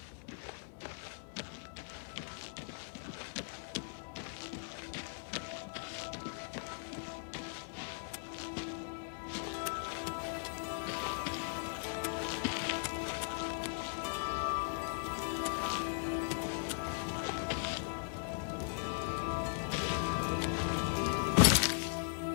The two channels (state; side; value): silent; right; digital silence